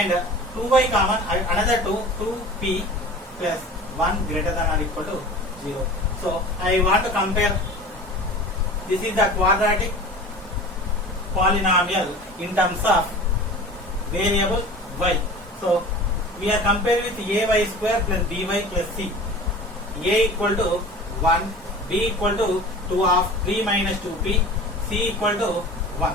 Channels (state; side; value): normal; both; correlation 0.38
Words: 2y common another 2p plus 1 greater than or equal to 0. So I want to compare, this is the quadratic polynomial in terms of variable y. So we are comparing with ay square plus by plus c. A equal to 1, b equal to 2 of 3 minus 2p, c equal to 1.